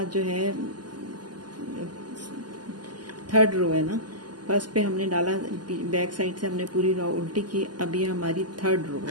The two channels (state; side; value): late; left; 0.70 ms